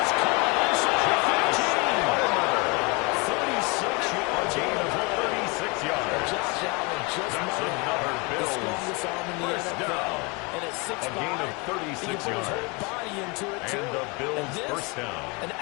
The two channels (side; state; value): right; quieter; 28.6 dB